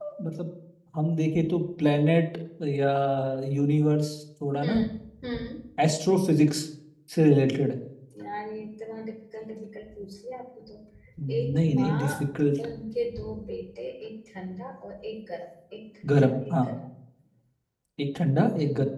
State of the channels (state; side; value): identical; both; correlation 1.00